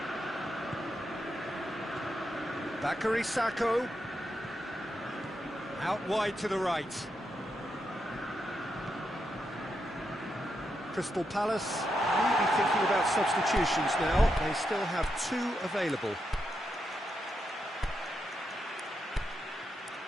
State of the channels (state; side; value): normal; both; correlation 0.84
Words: Bakary Sakho. Out wide to the right. Crystal Palace maybe thinking about substitutions now. They still have 2 available.